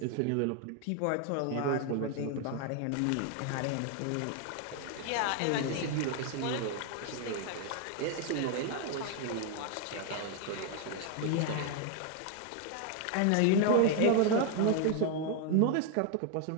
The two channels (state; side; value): different; both; correlation 0.00